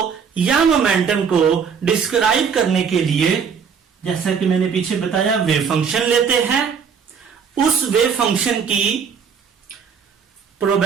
या मोमेंटम को डिस्क्राइब करने के लिए, जैसा कि मैंने पीछे बताया, वेव फंक्शन लेते हैं। उस वेव फंक्शन की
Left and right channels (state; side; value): quieter; left; 6.5 dB